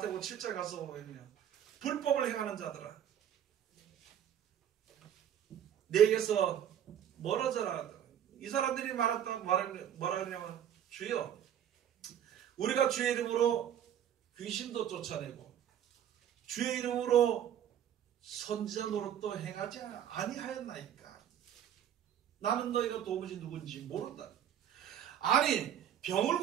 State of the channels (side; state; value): left; quieter; 9.9 dB